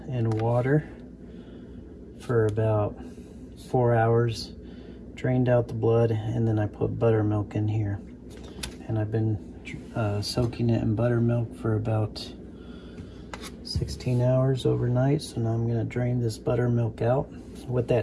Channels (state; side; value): identical; both; correlation 1.00